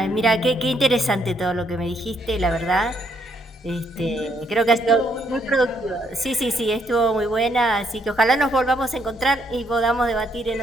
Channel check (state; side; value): normal; both; correlation 0.72